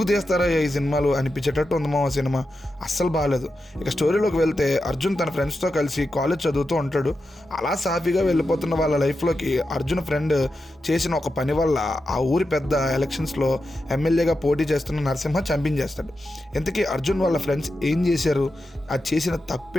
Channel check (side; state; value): both; normal; correlation 0.89